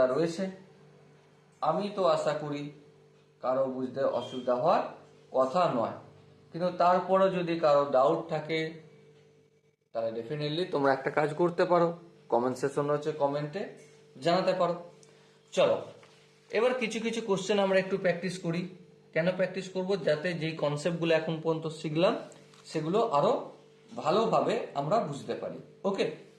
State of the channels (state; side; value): identical; both; correlation 1.00